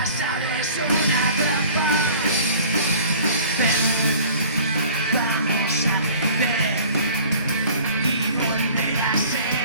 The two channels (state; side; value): inverted; both; correlation -0.47